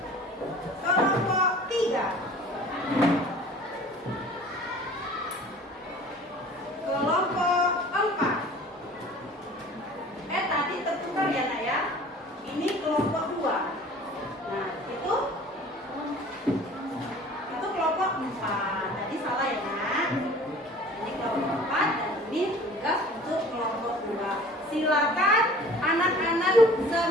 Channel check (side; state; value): both; normal; correlation 0.46